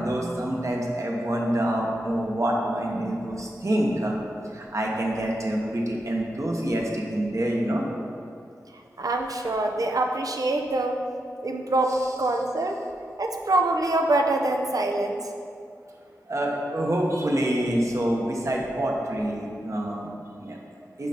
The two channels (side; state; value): both; normal; correlation 0.83